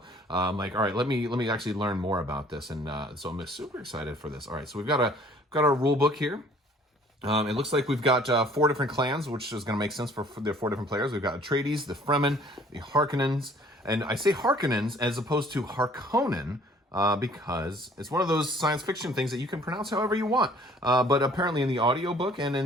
I'm all right, let me actually learn more about this, and so I'm super excited for this. All right, so we've got our rule book here. It looks like we've got 4 different clans, which is going to make sense for the 4 different players. We've got Atreides, the Fremen, the Harkonnens, and I say Harkonnens as opposed to Harkonnen, because it's one of those science fiction things that you can pronounce however you want. But apparently in the audiobook and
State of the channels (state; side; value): normal; both; correlation 0.55